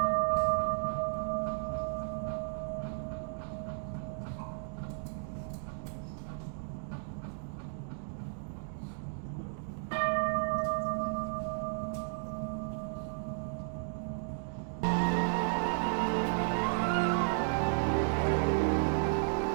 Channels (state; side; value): silent; left; digital silence